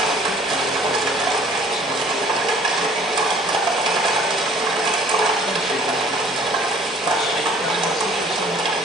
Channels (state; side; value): normal; both; correlation 0.54